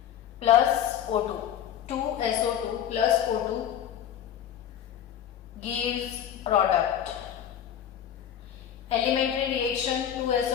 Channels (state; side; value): quieter; right; 10.0 dB